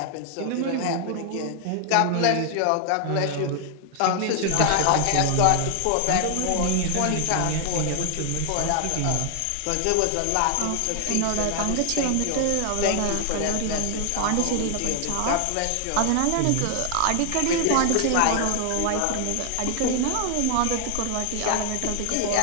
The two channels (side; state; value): both; different; correlation 0.00